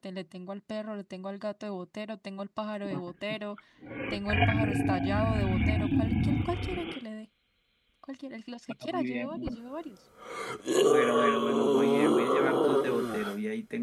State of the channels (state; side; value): identical; both; correlation 1.00